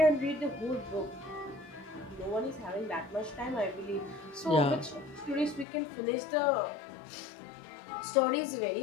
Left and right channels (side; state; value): right; drops out; at 5.7 s